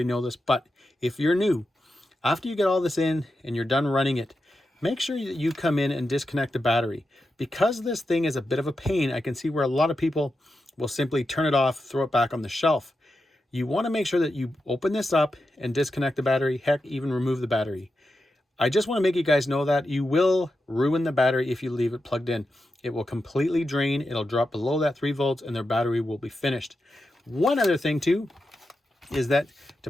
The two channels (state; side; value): normal; both; correlation 0.89